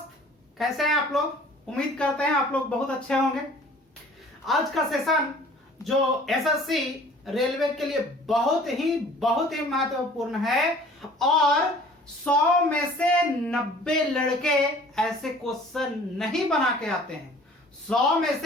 कैसे हैं आप लोग। उम्मीद करते हैं आप लोग बहुत अच्छे होंगे। आज का सेशन जो एसएससी रेलवे के लिए बहुत ही महत्वपूर्ण है और 100 में से 90 लड़के ऐसे क्वेश्चन नहीं बना के आते हैं। 100 में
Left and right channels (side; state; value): both; normal; correlation 0.50